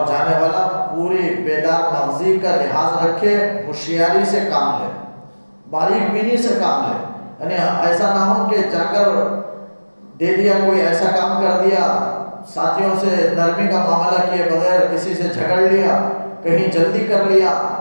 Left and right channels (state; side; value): inverted; both; correlation -1.00